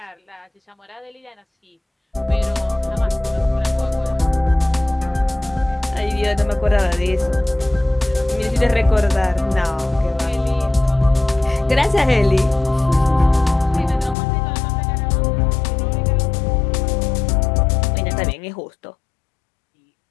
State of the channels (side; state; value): right; drops out; at 14.2 s